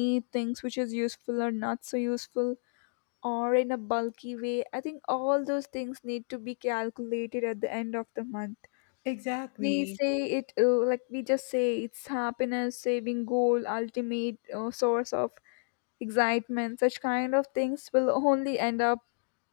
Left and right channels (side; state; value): right; silent; digital silence